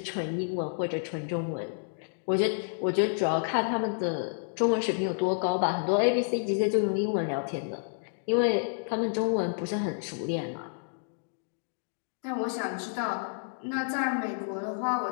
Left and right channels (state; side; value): silent; right; digital silence